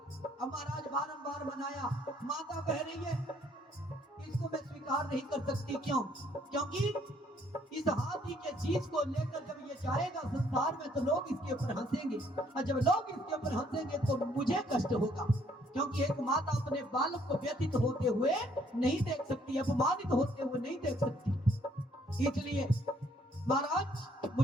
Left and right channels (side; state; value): both; normal; correlation 0.65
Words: महाराज बारंबार मनाया, माता कह रही है इसको मैं स्वीकार नहीं कर सकती। क्यों? क्योंकि इस हाथी के चीज को लेकर जब ये जाएगा संसार में तो लोग इसके ऊपर हंसेंगे, और जब लोग इसके ऊपर हंसेंगे तो मुझे कष्ट होगा, क्योंकि एक माता अपने बालक को व्यथित होते हुए नहीं देख सकती, अपमानित होते हुए नहीं देख सकती। इसलिए महाराज